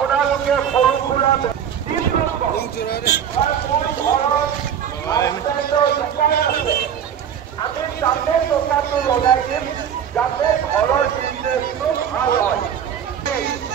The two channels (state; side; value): quieter; left; 8.6 dB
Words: সৰু সুৰা আমি তাতে টকাটো লগাই দিম যাতে ঘৰৰ বিজনেছটো ভাল হয়